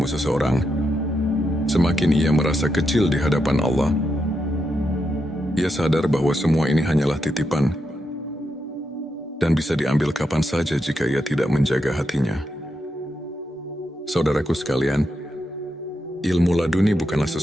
seseorang, semakin ia merasa kecil di hadapan Allah. Ia sadar bahwa semua ini hanyalah titipan dan bisa diambil kapan saja jika ia tidak menjaga hatinya. Saudaraku sekalian, ilmu laduni bukanlah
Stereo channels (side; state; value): both; normal; correlation 0.84